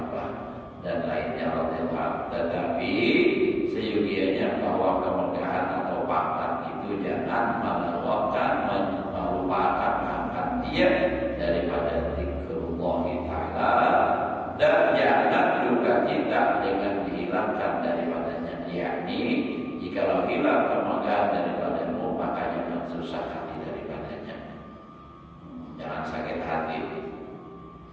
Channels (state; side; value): identical; both; correlation 1.00